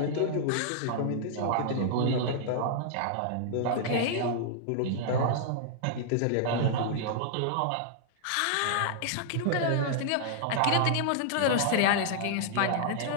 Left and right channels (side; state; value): both; different; correlation -0.01